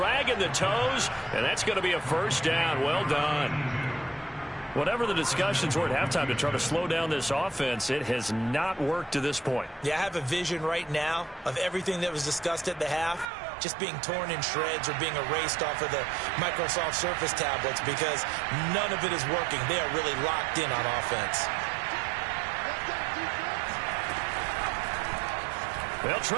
the toes, and that's going to be a first down. Well done. Whatever the discussions were at halftime to try to slow down this offense, it has not worked to this point. Yeah, I have a vision right now of everything that was discussed at the half just being torn in shreds or being erased off of the Microsoft Surface tablets because none of it is working. They are really locked in on offense. They'll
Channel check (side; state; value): left; drops out; at 13.3 s